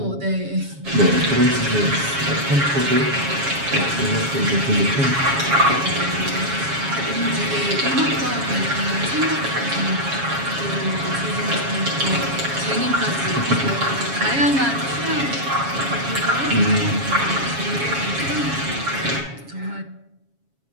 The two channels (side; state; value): left; late; 7.2 ms